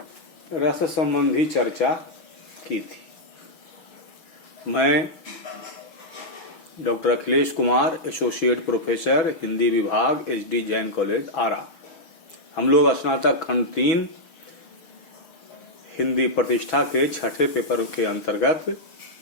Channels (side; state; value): right; late; 6.2 ms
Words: रस संबंधी चर्चा की थी। मैं doctor Akhilesh Kumar, associate professor, Hindi विभाग, एचडी जैन कॉलेज, आरा। हम लोग स्नातक खंड 3 हिंदी प्रतिष्ठा के छठे पेपर के अंतर्गत